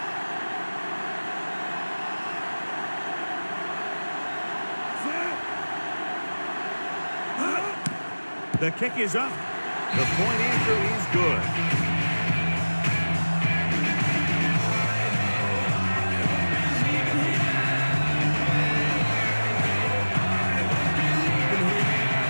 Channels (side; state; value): both; inverted; correlation -1.00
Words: The kick is up. The point answer is good.